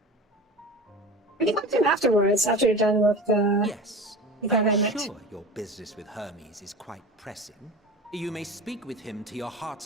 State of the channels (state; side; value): normal; both; correlation 0.33